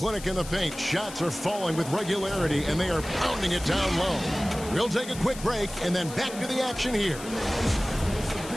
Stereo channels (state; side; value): noise; left; hiss, 13 dB below the sound